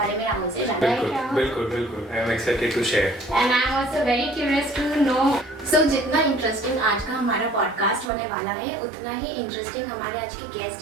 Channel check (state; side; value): drops out; left; at 8.1 s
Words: में राहुल से जानना है। बिल्कुल I am excited to share and I am also very curious to know. So जितना इंटरेस्टिंग आज का हमारा पॉडकास्ट होने वाला है उतना ही इंटरेस्टिंग हमारे आज के